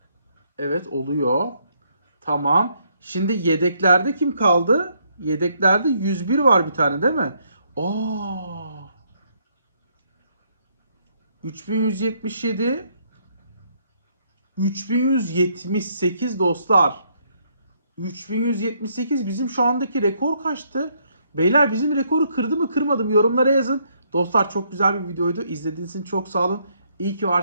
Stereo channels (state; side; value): inverted; both; correlation -0.71